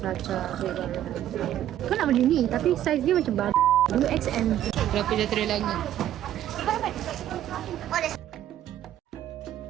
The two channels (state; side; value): quieter; left; 12.0 dB